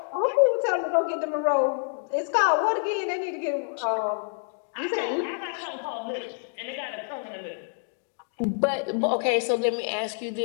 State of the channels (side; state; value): right; silent; 60 dB below the other